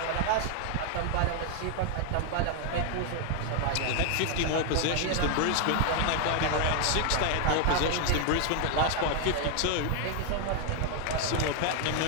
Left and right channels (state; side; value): different; both; correlation 0.00